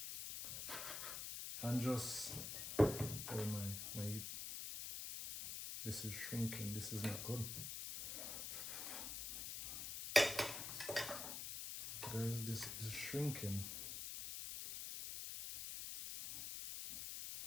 And just, oh my, this is shrinking. This is not good. Guys, this is shrinking.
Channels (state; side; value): noise; left; hiss, 5 dB below the sound